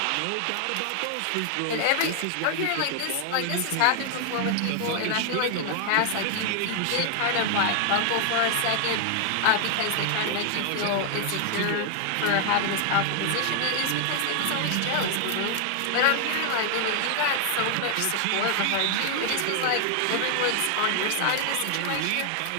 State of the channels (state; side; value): different; both; correlation 0.00